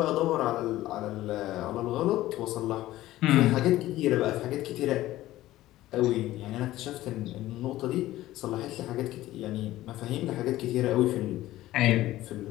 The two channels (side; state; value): right; quieter; 15.6 dB